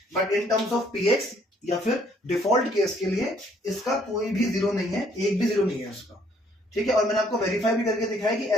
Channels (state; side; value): normal; both; correlation 0.64